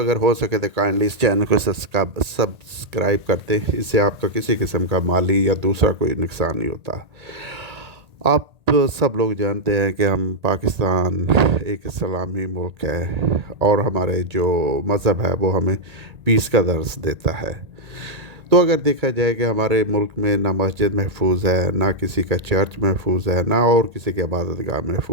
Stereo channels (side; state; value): left; late; 1.8 ms